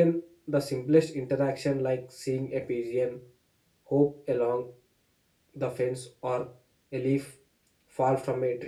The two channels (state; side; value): identical; both; correlation 1.00